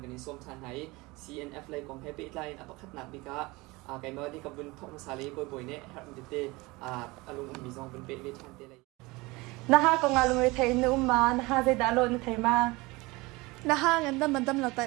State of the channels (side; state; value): left; quieter; 23.0 dB